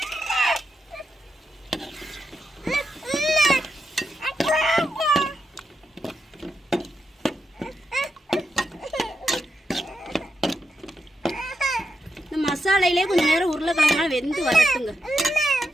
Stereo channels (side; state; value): both; normal; correlation 0.85